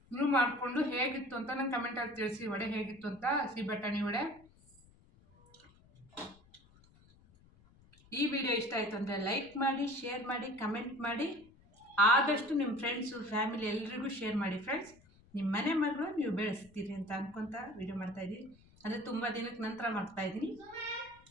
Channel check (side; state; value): left; noise; rumble, 27 dB below the sound